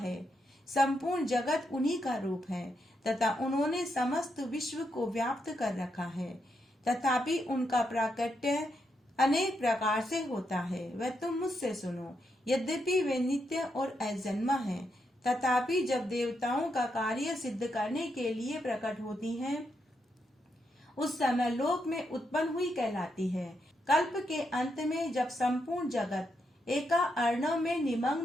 संपूर्ण जगत उन्हीं का रूप है तथा उन्होंने समस्त विश्व को व्याप्त कर रखा है। तथापि उनका प्राकट्य अनेक प्रकार से होता है, वह तुम मुझसे सुनो। यद्यपि वे नित्य और अजन्मा हैं, तथापि जब देवताओं का कार्य सिद्ध करने के लिए प्रकट होती हैं, उस समय लोक में उत्पन्न हुई कहलाती है। कल्प के अंत में जब संपूर्ण जगत एका अर्णव में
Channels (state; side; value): normal; both; correlation 0.81